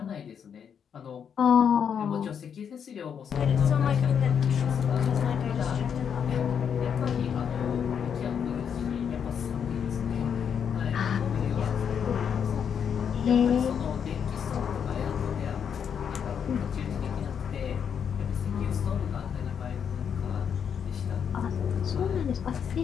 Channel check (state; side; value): quieter; right; 7.6 dB